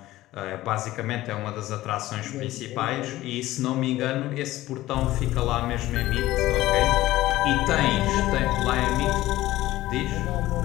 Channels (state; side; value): quieter; right; 16.2 dB